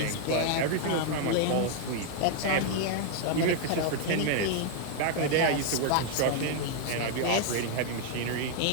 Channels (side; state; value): both; different; correlation 0.00